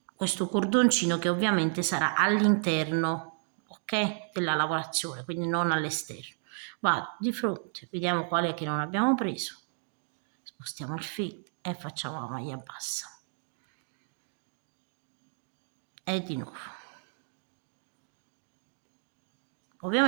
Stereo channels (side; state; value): left; silent; 57 dB below the other